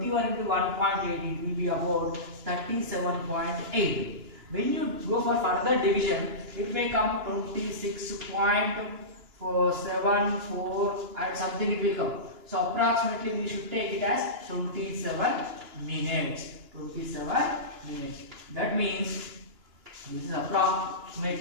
into 1.8, it will be about 37.8. When you go for further division, it may come 26.474 and something it will come. So approximately we should take it as 27 minutes. 27 minutes. That means this is approximate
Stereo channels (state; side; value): late; left; 2.9 ms